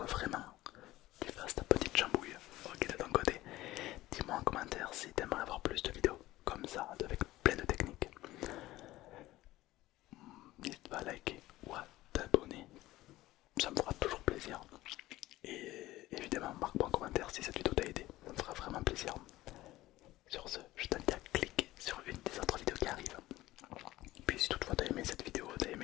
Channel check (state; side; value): quieter; right; 16.8 dB